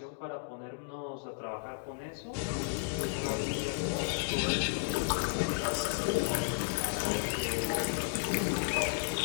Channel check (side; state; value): right; silent; digital silence